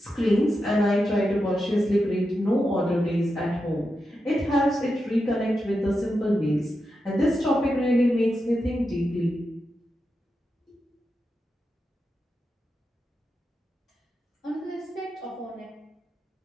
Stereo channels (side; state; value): both; normal; correlation 0.88